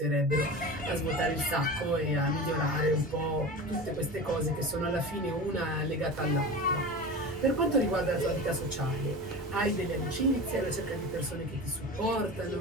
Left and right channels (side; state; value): both; normal; correlation 0.31